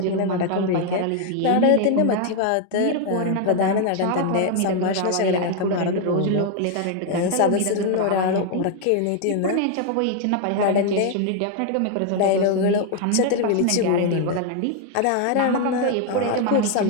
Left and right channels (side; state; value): both; different; correlation 0.00